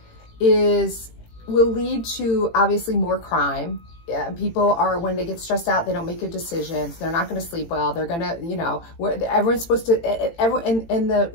will lead to obviously more crime. people are, when they get stressed out, they don't make good decisions. They're not going to sleep well. They're going to, you know, everyone's supposed to, and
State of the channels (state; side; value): late; right; 18 ms